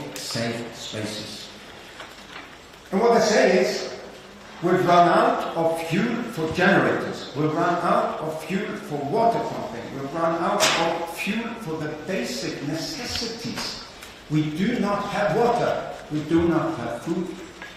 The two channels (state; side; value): identical; both; correlation 1.00